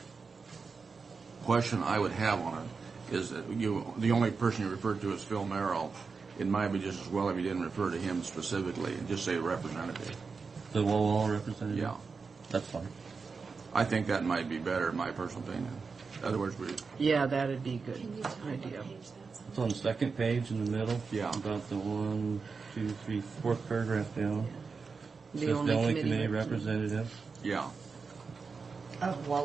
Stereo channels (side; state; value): left; quieter; 4.9 dB